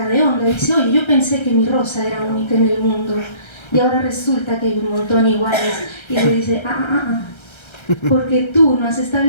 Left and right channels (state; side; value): late; right; 1.3 ms